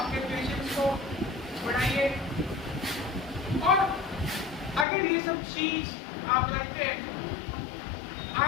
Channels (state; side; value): drops out; right; at 4.9 s